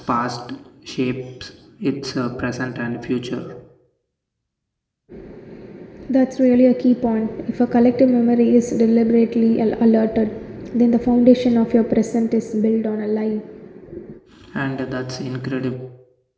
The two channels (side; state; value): both; identical; correlation 1.00